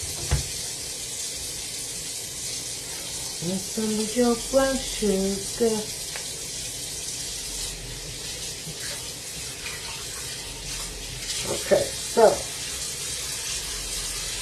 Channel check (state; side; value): identical; both; correlation 1.00